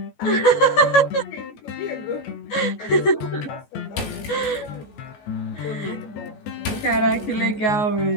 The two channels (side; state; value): right; late; 14 ms